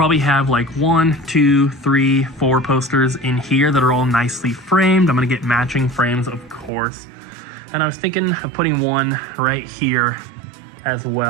have like 1, 2, 3, 4 posters in here that are all nicely framed. I'm gonna get matching frames, of course. And I was thinking of putting one right here as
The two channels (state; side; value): drops out; left; at 6.7 s